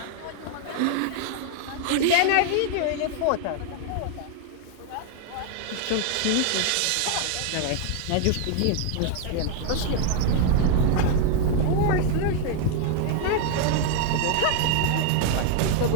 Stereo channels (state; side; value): different; both; correlation 0.00